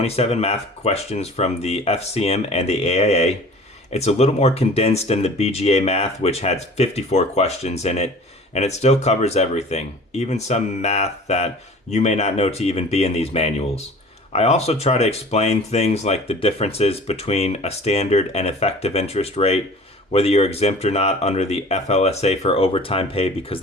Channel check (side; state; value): both; normal; correlation 0.45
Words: math questions from the FCM and the AIA. It's a little more condensed than the BGA math, which had 54 questions in it, and it still covers everything, even some math that you may not know to even be in these manuals. I also try to explain things like the differences between a standard and effective interest rate, whether you're exempt or not under the FLSA for overtime pay, because